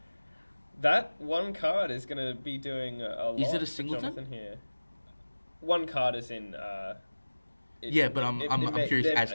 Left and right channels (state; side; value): inverted; both; correlation -1.00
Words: That one card is going to be doing a lot. Is it a for singleton? Jonathan here. One card is in. Yeah, but I'm curious as